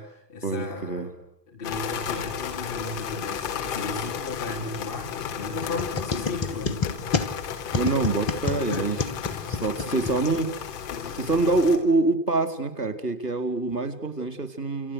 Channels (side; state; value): right; late; 2.5 ms